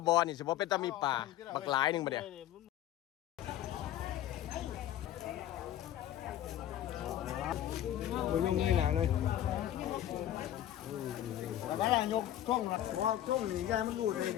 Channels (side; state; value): right; quieter; 12.3 dB